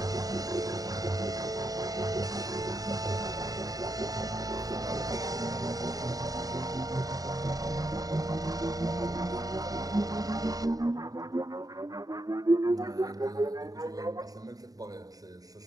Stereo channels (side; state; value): left; late; 0.18 ms